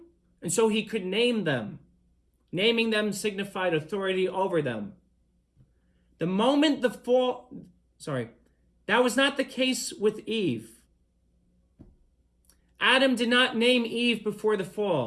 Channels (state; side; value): identical; both; correlation 1.00